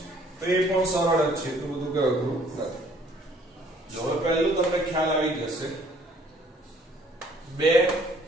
તો એ પણ સરળ જ છે તો બધું કે અઘરું નથી જો હવે પહેલું તમને ખ્યાલ આવી જશે 2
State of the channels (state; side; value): normal; both; correlation 0.59